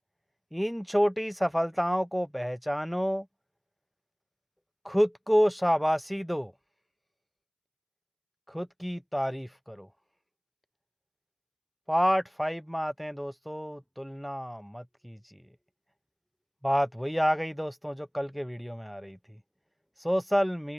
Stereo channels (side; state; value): both; identical; correlation 1.00